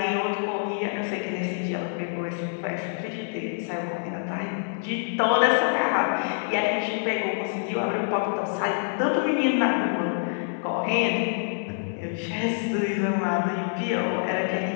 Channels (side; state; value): right; silent; 61 dB below the other